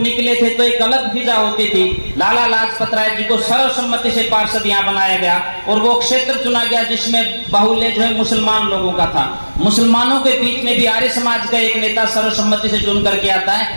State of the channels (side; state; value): both; inverted; correlation -1.00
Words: थे तो एक अलग फिजा होती थी। लाला लाजपत राय जी को सर्वसम्मति से पार्षद यहाँ बनाया गया और वो क्षेत्र चुना गया जिसमें बाहुल्य जो है मुसलमान लोगों का था। मुसलमानों के बीच में भी आर्य समाज का एक नेता सर्वसम्मति से चुन करके आता